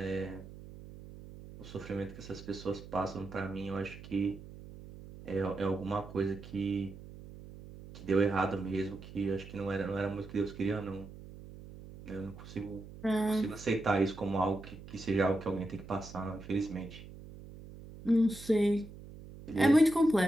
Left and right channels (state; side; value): noise; right; hum, 15 dB below the sound